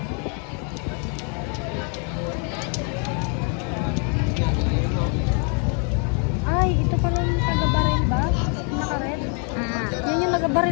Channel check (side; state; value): right; quieter; 38.9 dB